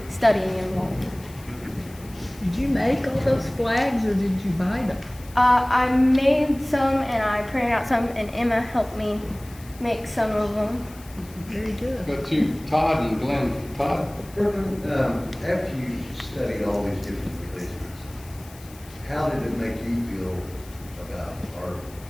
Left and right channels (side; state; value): left; noise; hiss, 22 dB below the sound